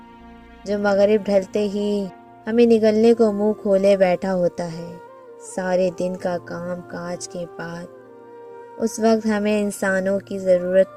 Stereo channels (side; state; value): both; identical; correlation 1.00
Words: جو مغرب ڈھلتے ہی ہمیں نگلنے کو منہ کھولے بیٹھا ہوتا ہے۔ سارے دن کا کام کاج کے بعد اس وقت ہمیں انسانوں کی ضرورت